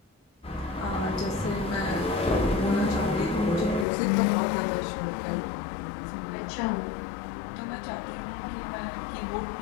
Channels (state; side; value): drops out; right; at 3.9 s